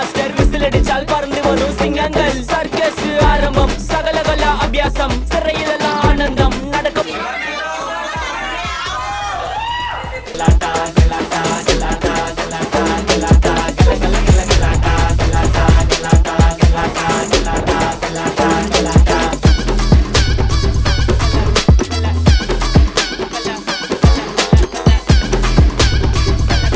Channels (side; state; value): both; identical; correlation 1.00